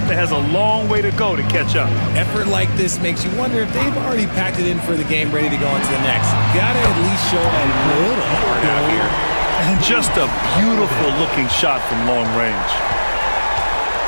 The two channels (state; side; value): inverted; both; correlation -1.00